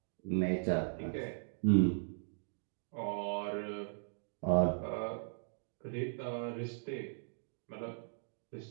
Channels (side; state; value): left; silent; digital silence